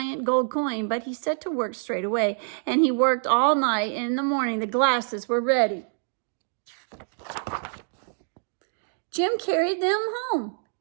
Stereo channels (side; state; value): left; silent; digital silence